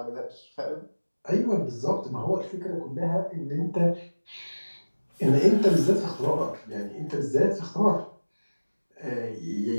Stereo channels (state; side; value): inverted; both; correlation -1.00